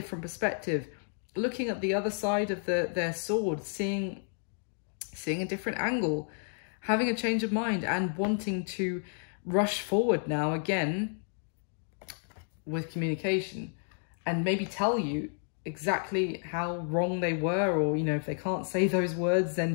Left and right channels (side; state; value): right; silent; 57 dB below the other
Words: perspective, looking at the other side of their sword, seeing a different angle, having a change of mind, and wanting to rush forward now again with communication, and maybe tell you exactly how wrong they were, or, you know, if they can't say those words,